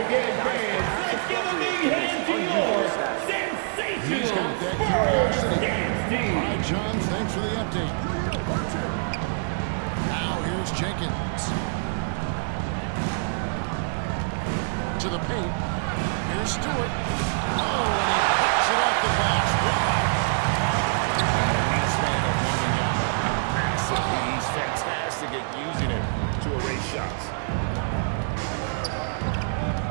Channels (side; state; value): left; silent; 56 dB below the other